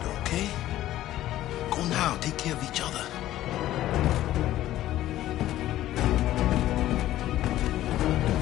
okay? Go now. Take care of each other.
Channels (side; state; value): right; quieter; 14.1 dB